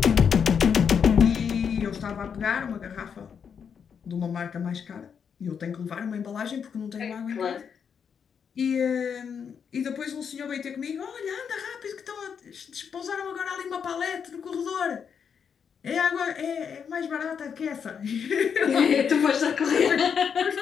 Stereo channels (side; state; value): right; quieter; 7.0 dB